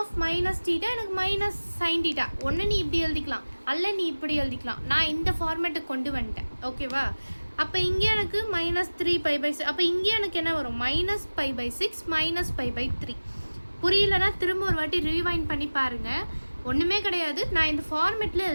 minus theta எனக்கு மைனஸ் சைன் தீட்டா. ஒன்று நீ இப்படி எழுதிக்கலாம், அல்ல நீ இப்படி எழுதிக்கலாம். நான் இந்த ஃபார்மேட்டுக்கு கொண்டு வந்துட்டேன். ஓகேவா? அப்போ இங்கே எனக்கு மைனஸ் 3 பை பை 6 அப்போ இங்கே எனக்கு என்ன வரும்? Minus pi by 6 minus pi by 3. புரியலன்னா திரும்ப ஒரு வாட்டி ரீவைண்ட் பண்ணி பாருங்கள். ஒன்றுமே கிடையாது, நான் இந்த ஃபார்மேட்டில்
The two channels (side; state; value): both; inverted; correlation -1.00